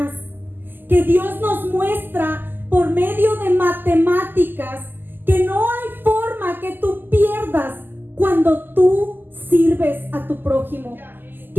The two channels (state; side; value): late; left; 0.091 ms